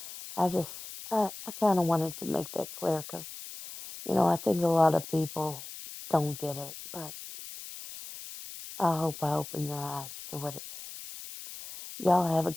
I just, I kind of wanted to make that clear because, I think a lot of people don't get it, but I hope I open your eyes to what it is. Y'all have a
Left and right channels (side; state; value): left; noise; hiss, 12 dB below the sound